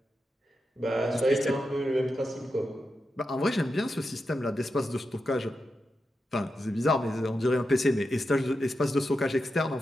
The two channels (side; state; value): both; normal; correlation 0.88